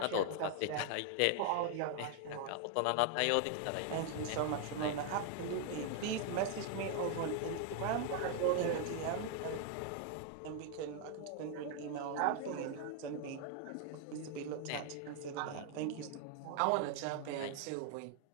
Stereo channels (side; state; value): both; different; correlation 0.00